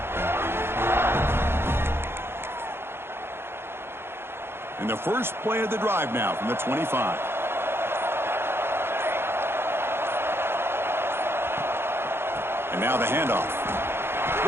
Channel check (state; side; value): late; left; 0.11 ms